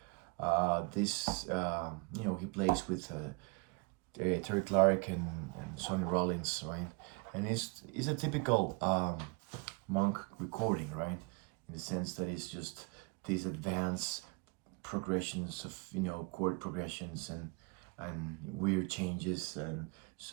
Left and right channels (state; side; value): quieter; left; 29.4 dB